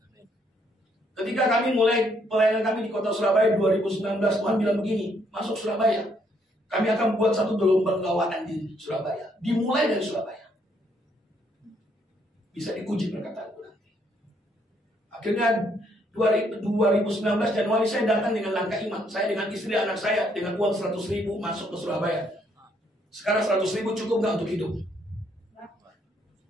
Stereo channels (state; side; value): normal; both; correlation 0.70